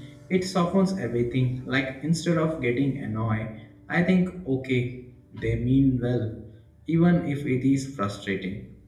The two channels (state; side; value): identical; both; correlation 1.00